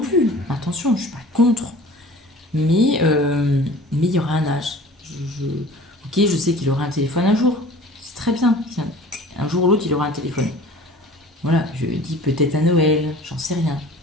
plus. Attention, je suis pas contre. Mais il y aura un âge. Ok, je sais qu'il aura un téléphone un jour. C'est très bien. Un jour ou l'autre, il aura un téléphone. Voilà, je dis peut-être à Noël, j'en sais rien.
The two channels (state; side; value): normal; both; correlation 0.44